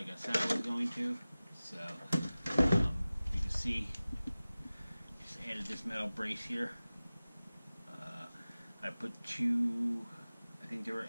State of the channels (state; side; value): inverted; both; correlation -0.97